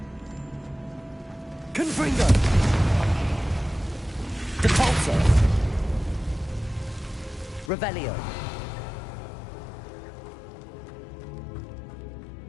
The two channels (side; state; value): right; drops out; at 7.7 s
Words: Confringo. Depulso. Revelio.